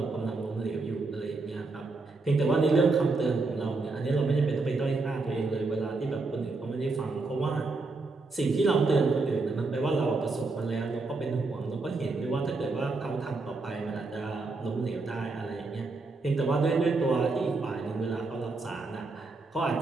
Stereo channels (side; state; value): left; quieter; 3.6 dB